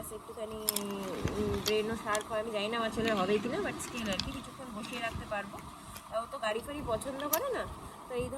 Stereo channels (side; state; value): both; identical; correlation 1.00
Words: একটুখানি ব্রেনও শার্প হয়। আমি জানি না আমার ছেলের হবে কিনা, বাট স্টিল আর কি কিছুক্ষণ বসিয়ে রাখতে পারবো। ও তো গাড়ি ফাড়ি পছন্দ করে না, তো এই